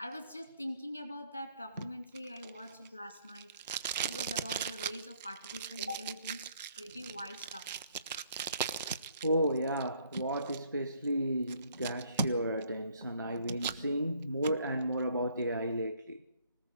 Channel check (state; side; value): inverted; both; correlation -0.64